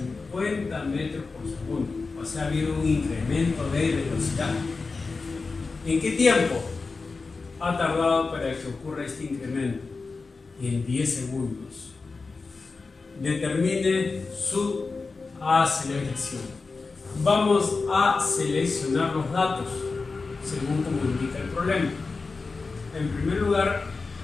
metros por segundo. O sea, ha habido un incremento de velocidad. ¿En qué tiempo ha tardado para que ocurra este incremento? En 10 segundos. Determine su aceleración. Vamos a seleccionar los datos según como indica el problema. En primer lugar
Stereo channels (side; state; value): right; quieter; 4.1 dB